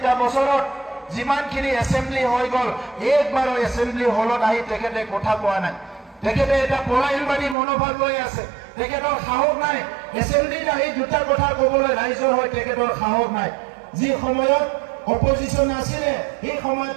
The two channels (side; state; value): left; drops out; at 7.6 s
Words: বছৰত যিমানখিনি এছেম্বলি হৈ গ'ল একবাৰো এছেম্বলি হলত আহি তেখেতে কথা কোৱা নাই তেখেতে এটা পলায়নবাদী মনোভাৱ লৈ আছে তেখেতৰ সাহস নাই এছেম্বলিত আহি দুটা কথা ক'বলৈ ৰাইজৰ হৈ তেখেতৰ সাহস নাই যি সময়ত অপজিশন আছিলে এই সময়ত